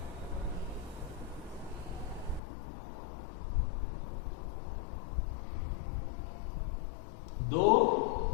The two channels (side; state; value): right; drops out; at 2.4 s